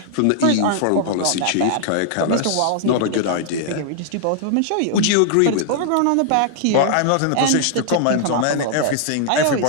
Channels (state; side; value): different; both; correlation -0.01